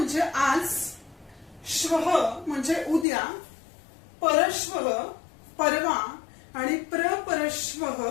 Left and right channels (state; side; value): drops out; right; at 3.1 s